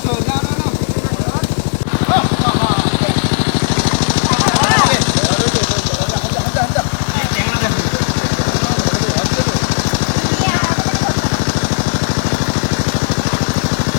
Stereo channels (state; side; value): silent; right; digital silence